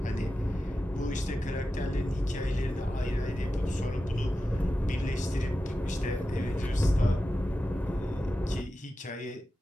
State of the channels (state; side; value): normal; both; correlation 0.92